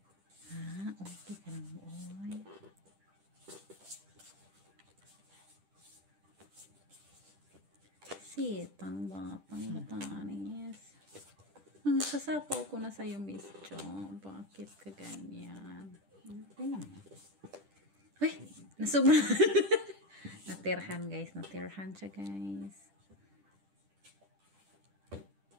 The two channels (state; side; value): late; left; 10 ms